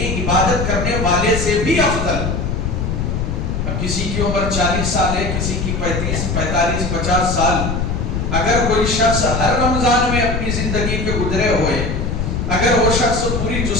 عبادت کرنے والے سے بھی افضل. اب کسی کی عمر 40 سال ہے، کسی کی 35 45 50 سال، اگر کوئی شخص ہر رمضان میں اپنی زندگی کے گزرے ہوئے، اگر وہ شخص پوری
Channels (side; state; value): left; noise; rumble, 1 dB below the sound